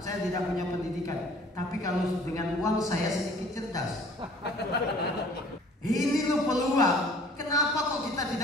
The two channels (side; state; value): both; normal; correlation 0.52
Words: Saya tidak punya pendidikan. Tapi kalau dengan uang saya sedikit cerdas. Ini loh peluang. Kenapa kok kita